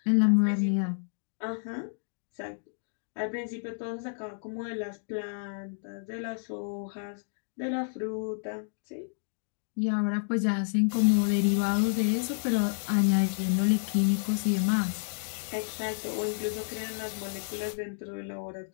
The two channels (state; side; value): silent; right; digital silence